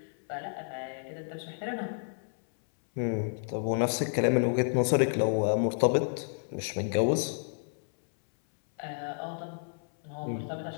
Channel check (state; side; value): silent; right; 57 dB below the other